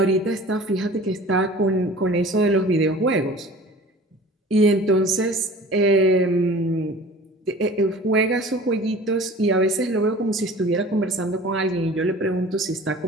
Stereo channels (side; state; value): both; normal; correlation 0.43